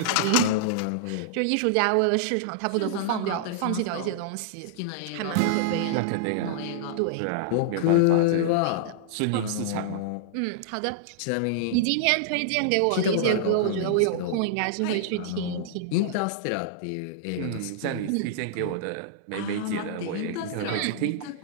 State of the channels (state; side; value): different; both; correlation -0.01